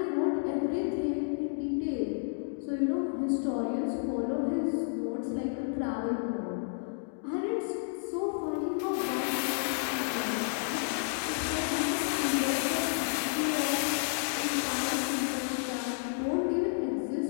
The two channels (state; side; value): silent; right; digital silence